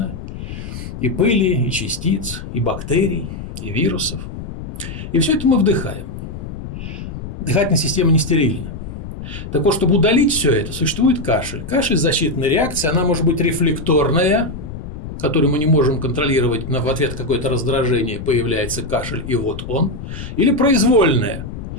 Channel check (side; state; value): left; noise; rumble, 9 dB below the sound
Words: И пыли, и частиц, и бактерий, и вирусов. И все это мы вдыхаем. Дыхательная система не стерильна. Так вот, чтобы удалить все это, существует кашель. Кашель – защитная реакция, она может быть рефлекторная, которую мы не можем контролировать, но в ответ какое-то раздражение появляется кашель, и вот он. Или произвольная.